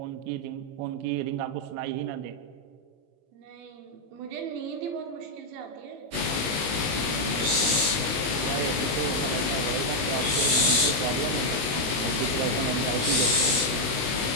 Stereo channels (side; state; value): left; late; 19 ms